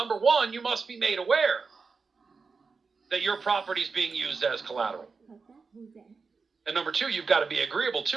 one, you must be made aware that your property is being used as collateral. And number two, you've got to be agreeable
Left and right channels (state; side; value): quieter; left; 4.7 dB